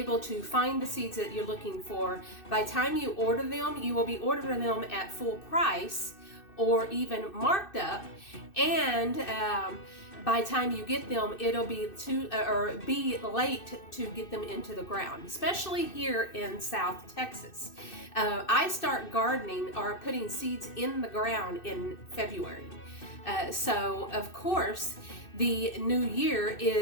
to find the seeds that you're looking for, by the time you order them, you will be ordering them at full price or even marked up, and by the time you get them, it'll be be late to get them into the ground, especially here in South Texas. I start gardening or putting seeds in the ground in February. So of course, the new year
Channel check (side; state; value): right; late; 2.6 ms